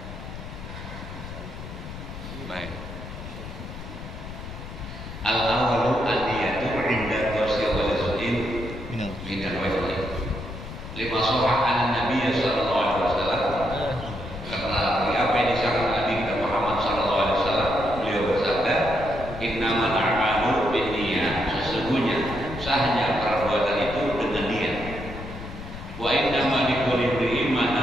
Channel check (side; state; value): left; noise; rumble, 11 dB below the sound